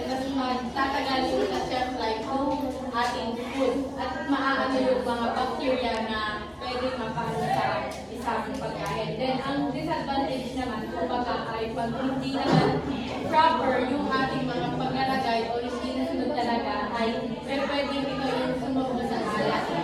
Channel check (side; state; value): both; identical; correlation 1.00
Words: mas tatagal yung shelf life ng ating food at maaano yung mga bacteria na pwede mapano sa isang pagkain. Then, ang disadvantage naman, kumbaga, ay pag hindi naman proper yung ating mga paglalagay o hindi nasunod talaga, ay pwede ito yung sunog sa alat.